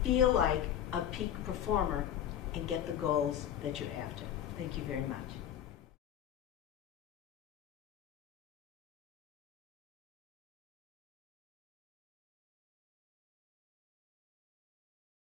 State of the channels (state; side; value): quieter; right; 10.3 dB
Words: feel like a peak performer, and get the goals that you're after. Thank you very much.